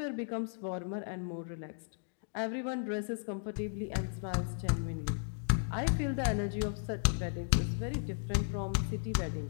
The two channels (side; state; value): right; silent; digital silence